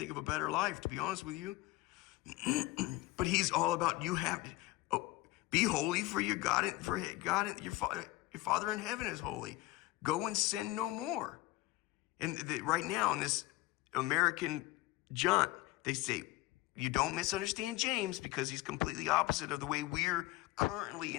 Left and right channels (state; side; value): quieter; right; 18.2 dB